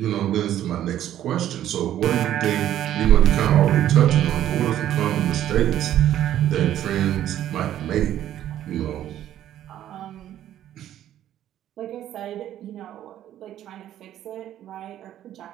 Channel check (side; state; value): left; quieter; 11.9 dB